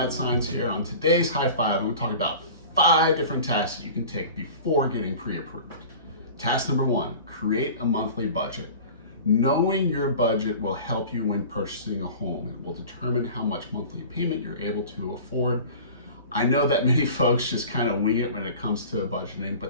Science here. On today's High Five, I'm going to talk about 5 different tasks that you can take before getting pre-approved. Task number 1, create a monthly budget. Knowing your budget will help you when purchasing a home. It will determine how much monthly payment you're able to afford. I know that many folks just kind of wing it when it comes to budgeting,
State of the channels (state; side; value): inverted; both; correlation -0.40